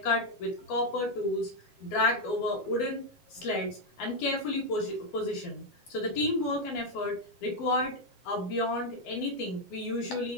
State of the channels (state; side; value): late; right; 7.5 ms